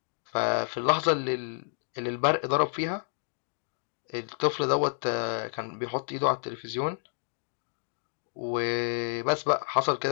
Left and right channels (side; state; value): right; silent; 58 dB below the other